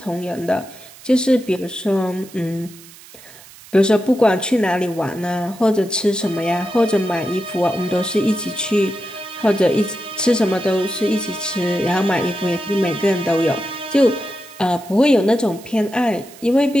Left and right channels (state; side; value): noise; right; hiss, 20 dB below the sound